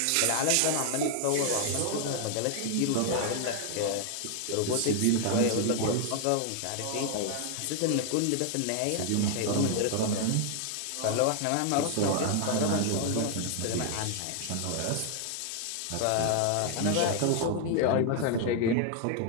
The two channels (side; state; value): both; different; correlation 0.00